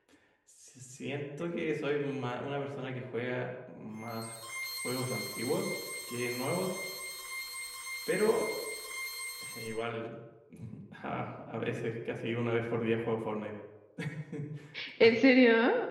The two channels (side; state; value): both; identical; correlation 1.00